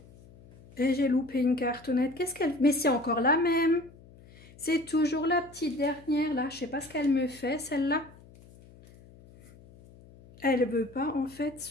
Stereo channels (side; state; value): left; noise; hum, 23 dB below the sound